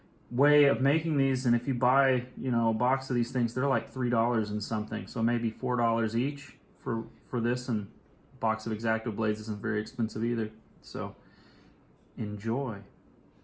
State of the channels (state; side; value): identical; both; correlation 1.00